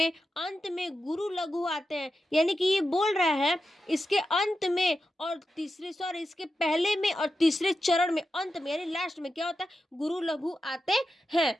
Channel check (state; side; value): normal; both; correlation 0.89